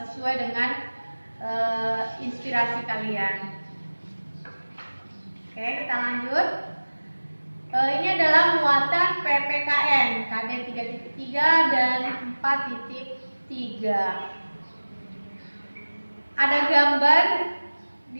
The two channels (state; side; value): inverted; both; correlation -1.00